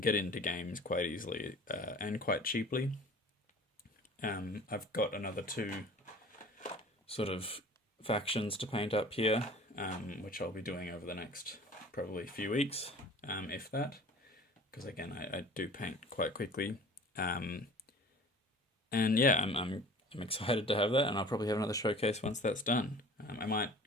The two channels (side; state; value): both; normal; correlation 0.44